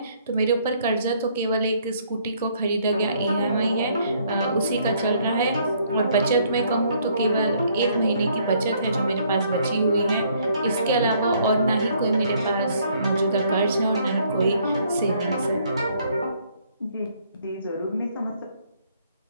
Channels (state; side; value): inverted; both; correlation -0.65